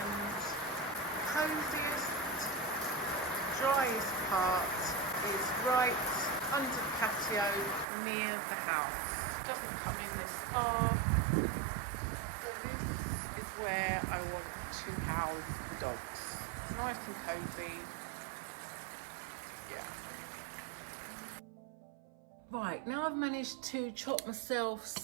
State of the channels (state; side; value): drops out; left; at 7.9 s